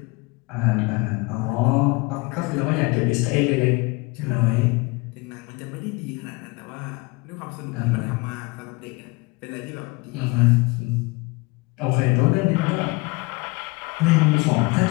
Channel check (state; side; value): quieter; right; 25.5 dB